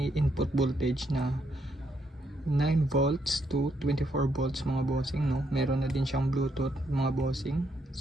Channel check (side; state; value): both; normal; correlation 0.75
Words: input voltage na 9 volts to 24 volts mga bossing, no. Meron na din siyang Bluetooth mga bossing.